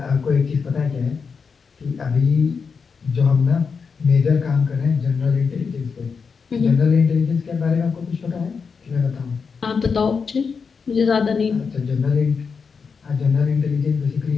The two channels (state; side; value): quieter; right; 5.5 dB